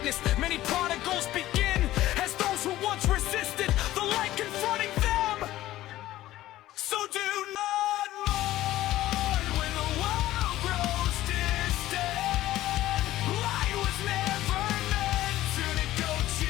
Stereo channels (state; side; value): quieter; right; 15.1 dB